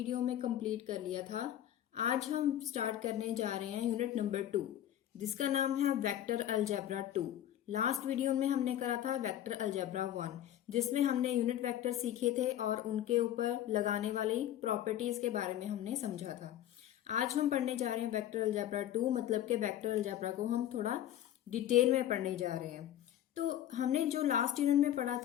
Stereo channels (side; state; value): right; quieter; 11.8 dB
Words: में कंप्लीट कर लिया था। आज हम स्टार्ट करने जा रहे हैं यूनिट नंबर 2 जिसका नाम है वेक्टर अलजेब्रा 2। लास्ट वीडियो में हमने करा था वेक्टर अलजेब्रा 1 जिसमें हमने यूनिट वेक्टर सीखे थे और उनके ऊपर लगाने वाली प्रॉपर्टीज के बारे में हमने समझा था। आज हम पढ़ने जा रहे हैं वेक्टर अलजेब्रा 2, मतलब कि वेक्टर अलजेब्रा को हम थोड़ा डिटेल में पढ़ने जा रहे हैं। तो हमने जो लास्ट यूनिट में पढ़ा